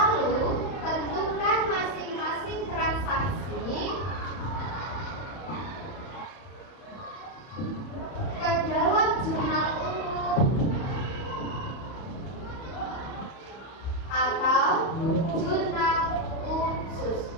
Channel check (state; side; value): late; right; 31 ms